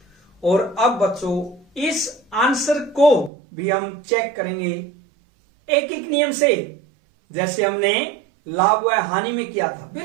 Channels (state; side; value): drops out; left; at 3.3 s